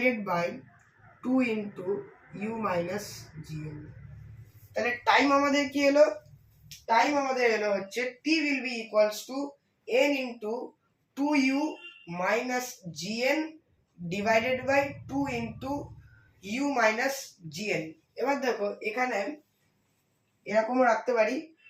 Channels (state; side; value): identical; both; correlation 1.00